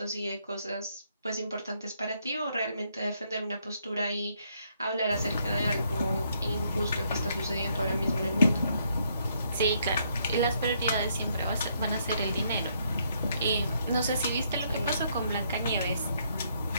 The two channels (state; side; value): inverted; both; correlation -0.72